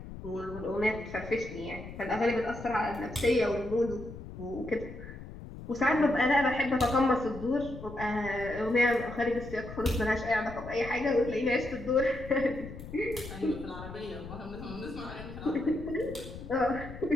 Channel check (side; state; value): left; noise; rumble, 12 dB below the sound